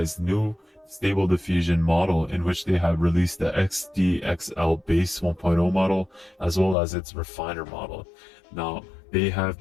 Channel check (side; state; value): right; drops out; at 6.8 s